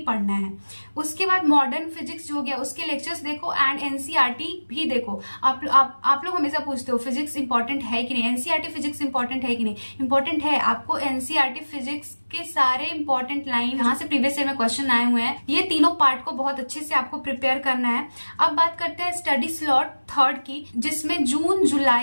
पढ़ना है। उसके बाद मॉडर्न फिजिक्स जो हो गया उसके लेक्चर्स देखो एंड एनसीईआरटी भी देखो। आप लोग हमेशा पूछते हो फिजिक्स इंपॉर्टेंट है कि नहीं, एनसीईआरटी फिजिक्स इंपॉर्टेंट है कि नहीं। इंपॉर्टेंट है, आपको एनसीईआरटी फिजिक्स के सारे इंपॉर्टेंट लाइन यहाँ से प्रीवियस ईयर में क्वेश्चन आए हुए हैं, ये तीनों पार्ट को बहुत अच्छे से आपको प्रिपेयर करना है। अब बात करते हैं स्टडी स्लॉट 3 की, जिसमें जून,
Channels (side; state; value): both; inverted; correlation -1.00